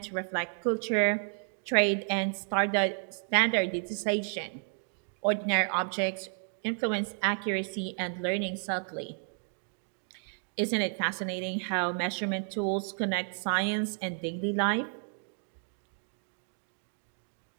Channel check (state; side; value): silent; left; 57 dB below the other